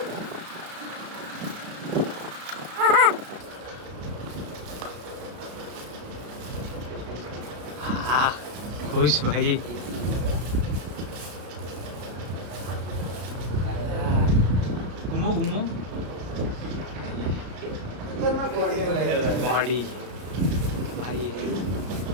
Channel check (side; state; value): left; late; 33 ms